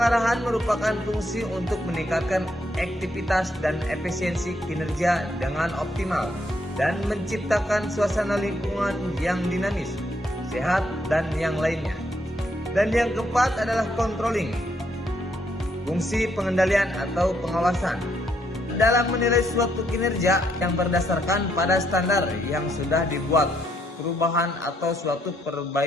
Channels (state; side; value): normal; both; correlation 0.74